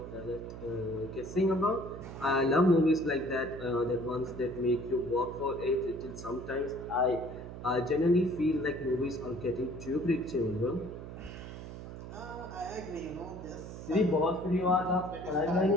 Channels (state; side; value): noise; right; hum, 11 dB below the sound